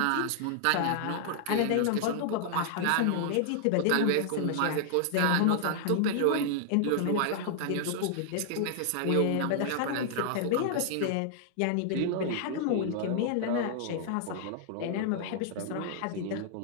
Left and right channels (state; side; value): different; both; correlation -0.01